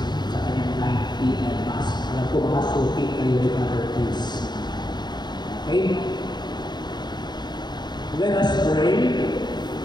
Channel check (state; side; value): late; right; 0.21 ms